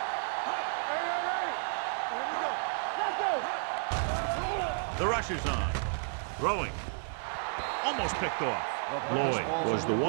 Hey, here we go. Let's go. The rush is on. Throwing. Almost picked off. Lloyd was the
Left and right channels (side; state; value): left; silent; digital silence